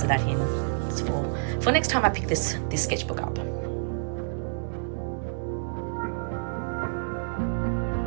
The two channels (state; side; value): silent; left; digital silence